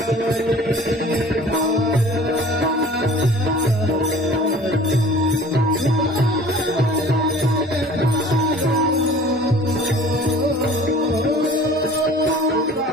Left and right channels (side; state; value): both; normal; correlation 0.47